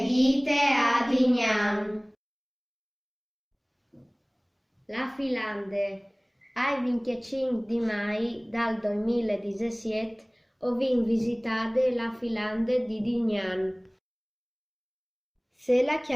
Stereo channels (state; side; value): identical; both; correlation 1.00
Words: vite ad ignam. La Filande, ai 25 di mai dal 2017 ho vin visitare la Filande di Dignan. Se la